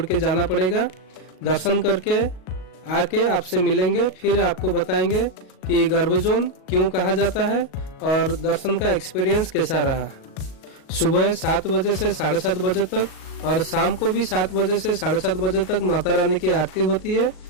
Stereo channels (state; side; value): late; right; 38 ms